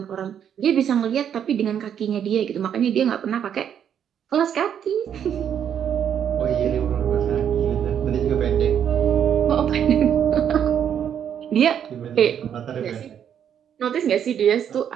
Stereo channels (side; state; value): left; quieter; 8.9 dB